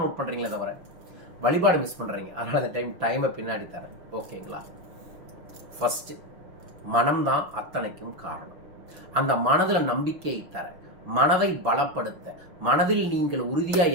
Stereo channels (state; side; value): late; left; 6.0 ms